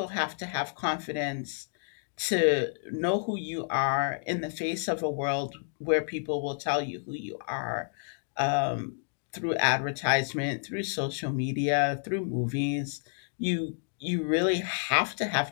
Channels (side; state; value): right; silent; digital silence